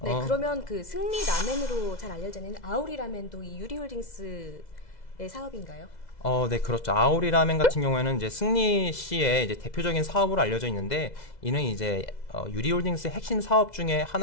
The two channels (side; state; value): right; late; 2.0 ms